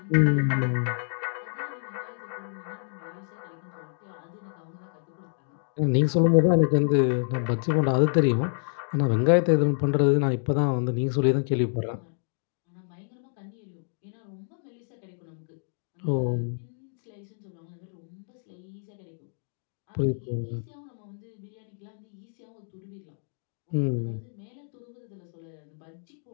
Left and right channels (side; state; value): right; silent; digital silence